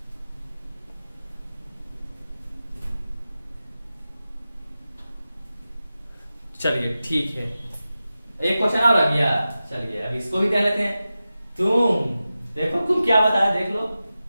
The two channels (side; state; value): both; inverted; correlation -0.94